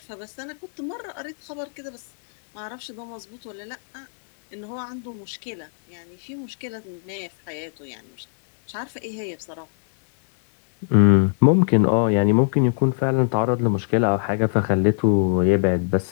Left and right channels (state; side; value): silent; right; digital silence